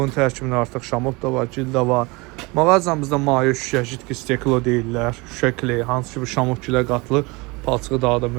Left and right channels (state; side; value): quieter; left; 25.7 dB